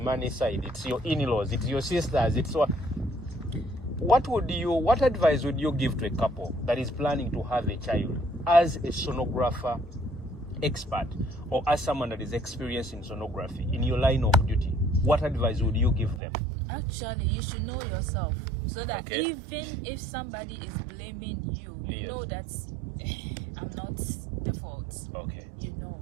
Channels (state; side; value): drops out; left; at 16.2 s